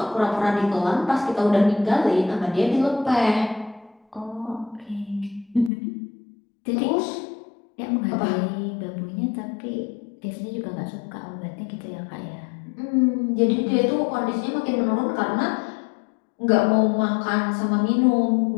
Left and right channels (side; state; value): right; drops out; at 5.7 s